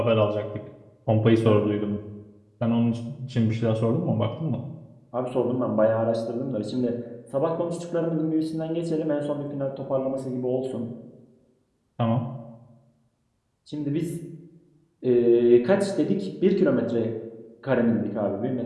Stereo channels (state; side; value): identical; both; correlation 1.00